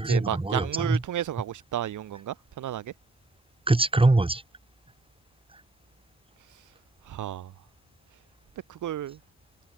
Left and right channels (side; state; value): left; quieter; 3.3 dB